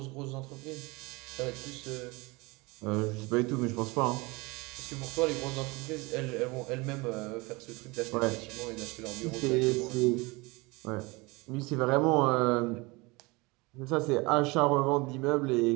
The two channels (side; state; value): left; quieter; 24.9 dB